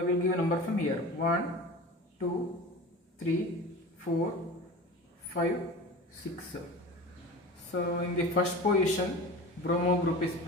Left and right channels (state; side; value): normal; both; correlation 0.34